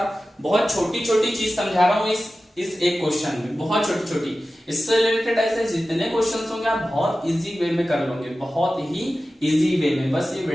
बहुत छोटी छोटी चीज समझा रहा हूं इस एक क्वेश्चन में, बहुत छोटी छोटी। इससे रिलेटेड ऐसे जितने क्वेश्चंस होंगे आप बहुत इजी वे में कर लोगे, बहुत ही इजी वे में। बस ये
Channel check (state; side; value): normal; both; correlation 0.95